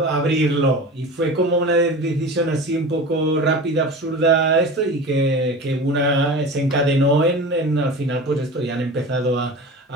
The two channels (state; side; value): normal; both; correlation 0.33